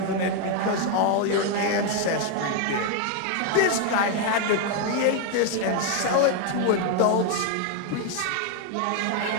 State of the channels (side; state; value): both; different; correlation 0.01